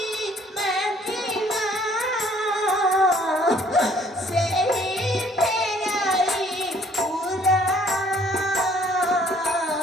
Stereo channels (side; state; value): both; normal; correlation 0.60